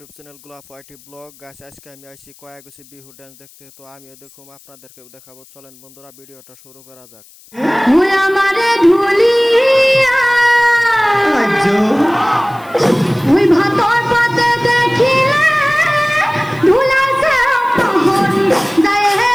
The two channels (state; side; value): noise; left; hiss, 26 dB below the sound